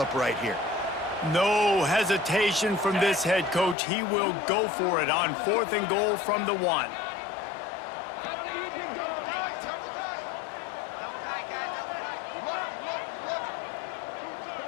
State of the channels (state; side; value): drops out; right; at 3.8 s